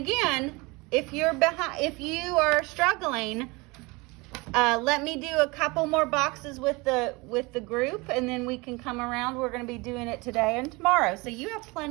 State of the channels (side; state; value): left; quieter; 25.2 dB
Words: if you are struggling, let me do a couple more boxes with the group, and then we can come around. We're going to be doing it today and tomorrow, so you have